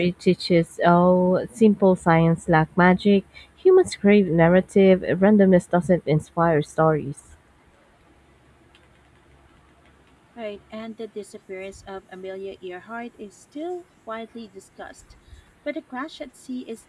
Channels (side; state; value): both; identical; correlation 1.00